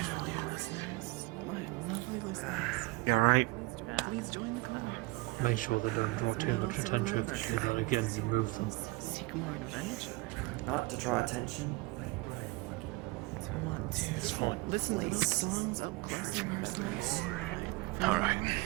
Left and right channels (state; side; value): quieter; left; 23.8 dB